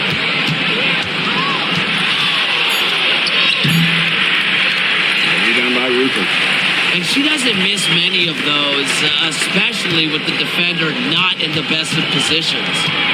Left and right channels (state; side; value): identical; both; correlation 1.00